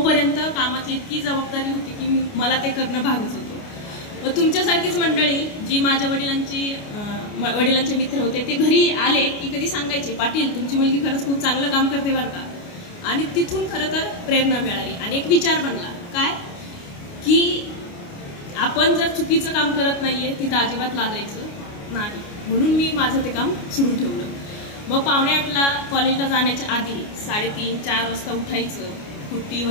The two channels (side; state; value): right; late; 29 ms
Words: कामाची इतकी जबाबदारी होती की मला ते करणं भागच होतं. मग तुमच्यासारखीच मंडळी जी माझ्या वडिलांचे मित्र होते ते घरी आले की कधी सांगायचे, पाटील तुमची मुलगी खरंच खूप चांगलं काम करते बरं का. आणि तिथून खरं तर प्रेरणा मिळाली आणि एक विचार बनला काय की आपण जर चुकीचं काम करत नाहीये तिथं अजिबात लाजायचं नाही. म्हणून मी माझं ते काम सुरू ठेवलं. मग 7:45ला कॉलेजला जाण्याच्या आधी 3:30-4 वाजता उठायचं, कुट्टी